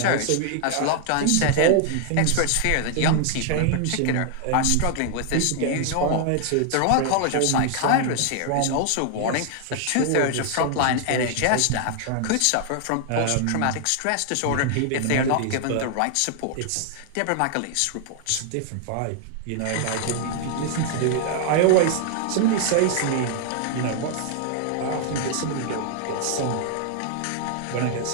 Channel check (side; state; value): both; different; correlation 0.00